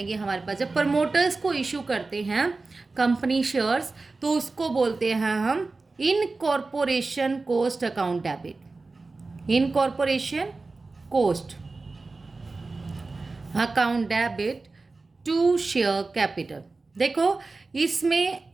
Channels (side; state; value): left; quieter; 3.7 dB